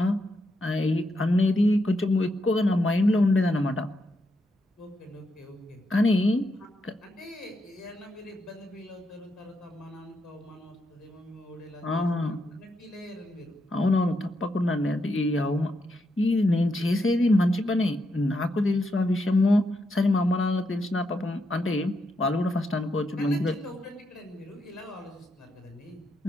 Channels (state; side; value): normal; both; correlation 0.81